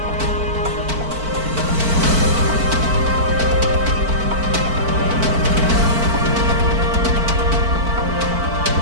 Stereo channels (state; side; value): late; left; 4.5 ms